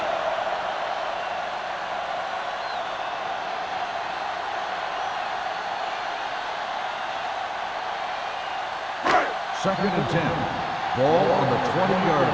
Second and 10. Ball on the 20-yard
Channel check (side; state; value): both; identical; correlation 1.00